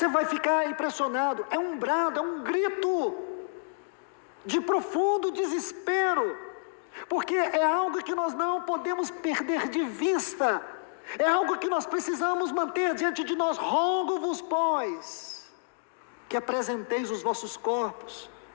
vai ficar impressionado. É um brado, é um grito de profundo desespero, porque é algo que nós não podemos perder de vista, é algo que nós precisamos manter diante de nós. Rogo-vos, pois, que apresenteis os vossos corpos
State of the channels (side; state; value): right; silent; digital silence